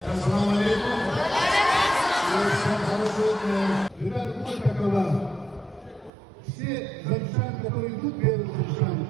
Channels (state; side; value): drops out; left; at 6.1 s